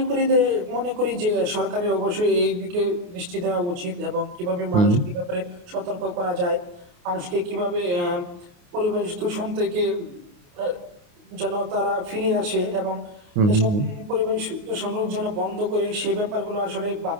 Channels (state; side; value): late; left; 28 ms